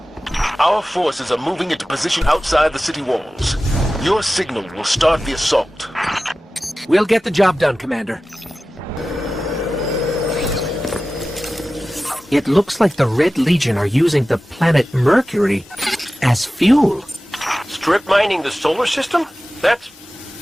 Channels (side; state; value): both; normal; correlation 0.95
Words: Our forces are moving into position outside the city walls. Your signal will start the assault. We'll get the job done, Commander. It looks like the Red Legion are using the planet Mercury as fuel. Strip mining the solar system? That's